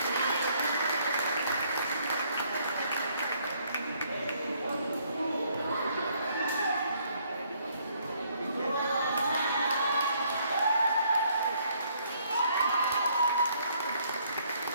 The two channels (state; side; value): inverted; both; correlation -0.66